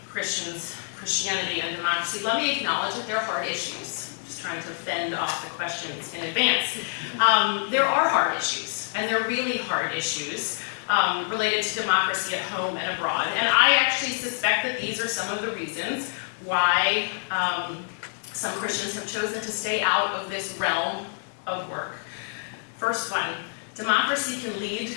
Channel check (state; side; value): silent; right; 60 dB below the other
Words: Christianity and democracy, let me acknowledge that there are hard issues. I'm just trying to fend off the questions in advance. There are hard issues, and they're really hard issues related to democracy at home and abroad. And I actually suspect that these are some of the reasons why some Christians have chosen to stay out of this realm of work. First one, democracy can lead